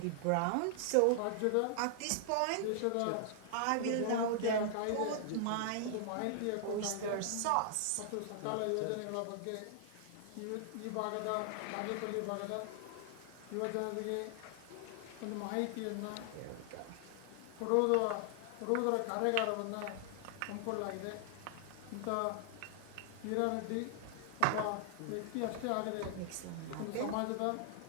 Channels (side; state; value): both; different; correlation 0.00